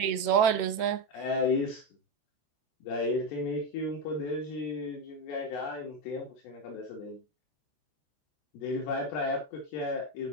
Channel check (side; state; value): right; late; 14 ms